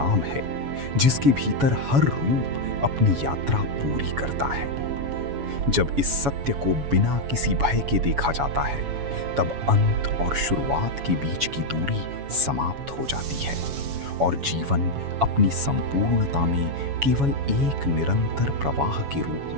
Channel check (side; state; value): left; late; 7.1 ms